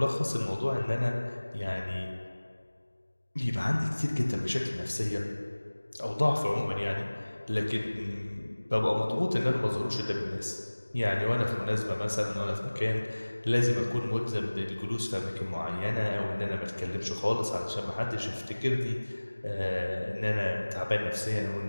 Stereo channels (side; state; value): both; inverted; correlation -1.00